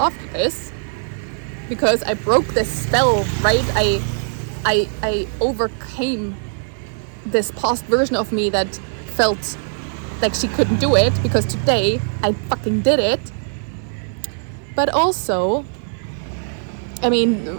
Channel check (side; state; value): left; silent; 57 dB below the other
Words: this, because I broke this spell, right? I overcame this past version of me that felt like she couldn't do it, because today I fucking did it. But also, I mean,